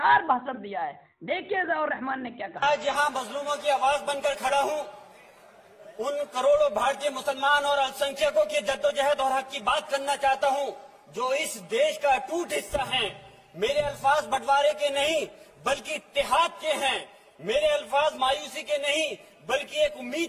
भाषण दिया है। देखिए जियाउर रहमान ने क्या कहा। आज यहाँ मजलूमों की आवाज बनकर खड़ा हूँ, उन करोड़ों भारतीय मुसलमान और अल्पसंख्यकों की जद्दोजहद और हक की बात करना चाहता हूँ जो इस देश का अटूट हिस्सा हैं। मेरे अल्फाज बंटवारे के नहीं बल्कि इत्तेहाद के हैं। मेरे अल्फाज मायूसी के नहीं बल्कि एक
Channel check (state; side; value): identical; both; correlation 1.00